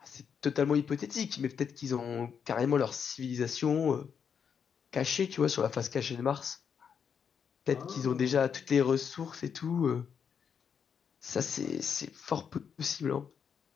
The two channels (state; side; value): quieter; right; 7.1 dB